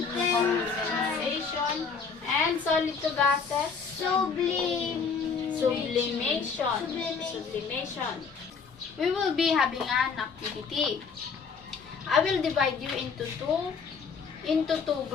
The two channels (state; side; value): quieter; right; 5.5 dB